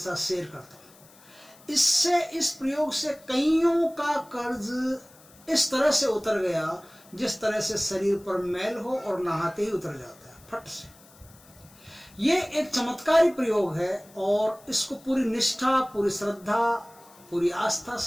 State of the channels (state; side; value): noise; left; hiss, 25 dB below the sound